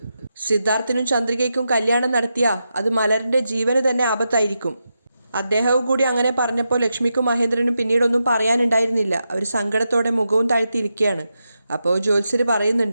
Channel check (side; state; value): both; inverted; correlation -0.87